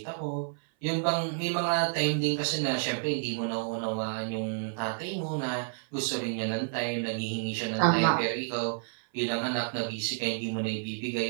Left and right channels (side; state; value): left; silent; 58 dB below the other